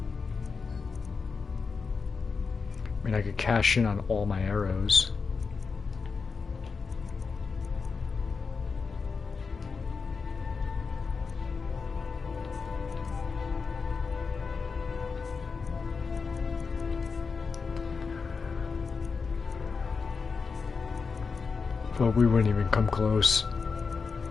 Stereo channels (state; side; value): quieter; right; 5.0 dB